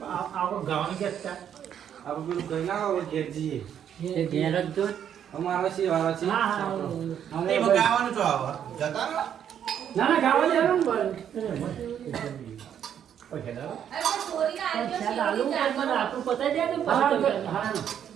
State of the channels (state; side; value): quieter; left; 9.2 dB